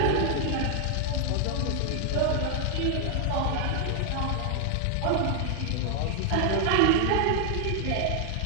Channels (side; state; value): both; different; correlation 0.00